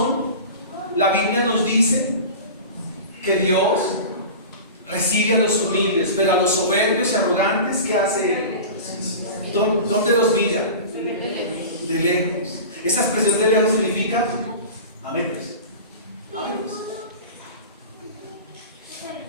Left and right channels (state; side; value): inverted; both; correlation -0.33